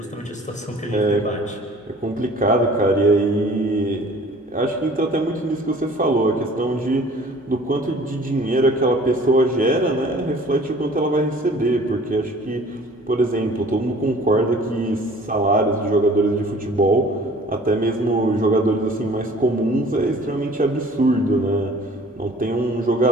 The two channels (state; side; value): normal; both; correlation 0.50